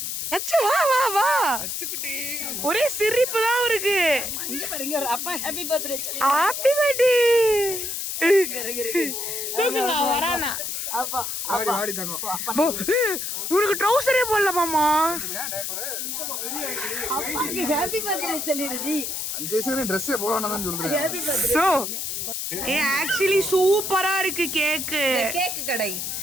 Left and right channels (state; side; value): noise; left; hiss, 3 dB below the sound